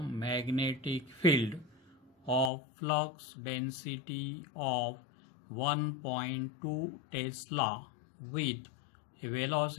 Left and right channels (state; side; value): drops out; right; at 2.5 s